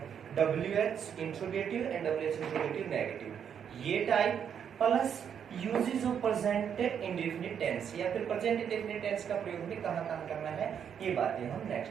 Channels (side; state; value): left; quieter; 8.1 dB